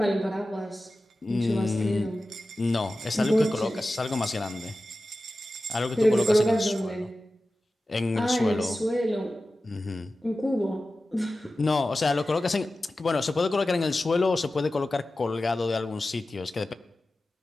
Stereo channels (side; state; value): both; normal; correlation 0.94